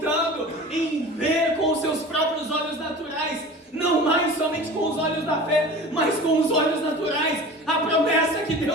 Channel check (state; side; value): normal; both; correlation 0.37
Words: em ver com os seus próprios olhos naturais, não mais somente com os olhos da fé, mas com os olhos naturais, a promessa que